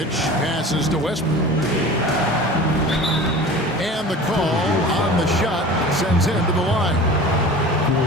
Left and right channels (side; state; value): both; normal; correlation 0.38